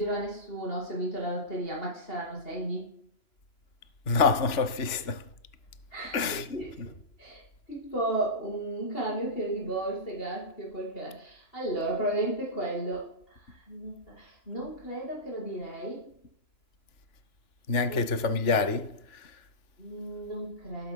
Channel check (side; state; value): right; late; 2.9 ms